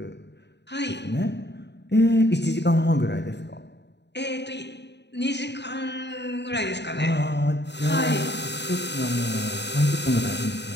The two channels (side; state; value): right; late; 0.50 ms